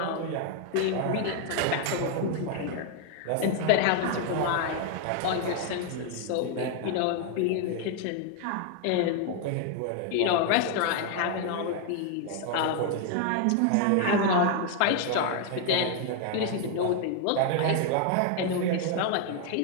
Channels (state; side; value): different; both; correlation 0.00